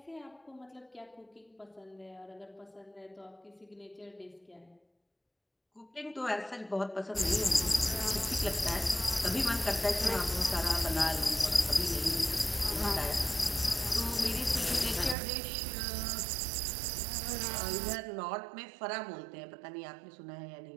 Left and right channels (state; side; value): drops out; left; at 15.2 s